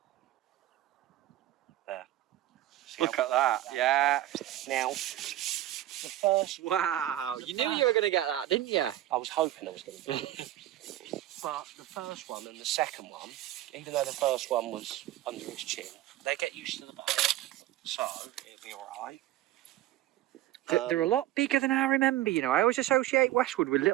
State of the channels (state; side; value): quieter; left; 14.0 dB